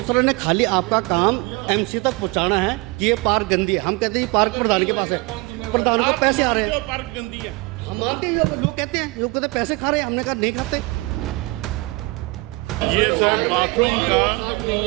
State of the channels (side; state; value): left; quieter; 24.7 dB